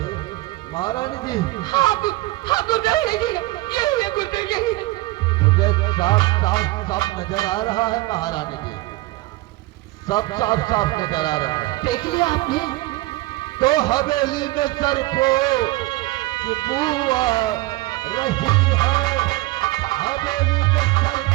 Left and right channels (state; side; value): quieter; left; 19.7 dB